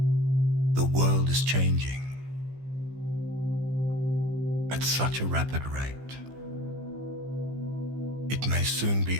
The world is changing at such a rapid rate. It may soon be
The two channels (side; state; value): left; late; 15 ms